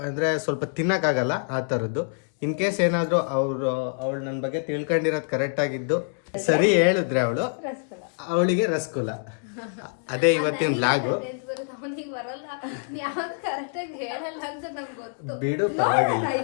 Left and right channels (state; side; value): silent; right; digital silence